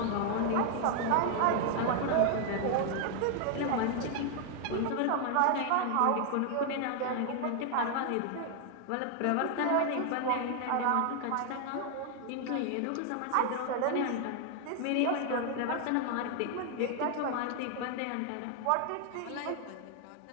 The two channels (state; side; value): different; both; correlation 0.00